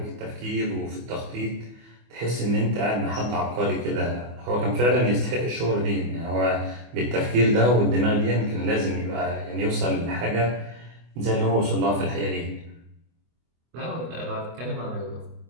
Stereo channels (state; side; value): late; left; 24 ms